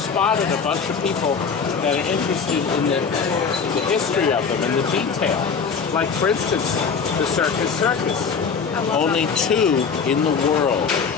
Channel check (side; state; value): right; quieter; 5.8 dB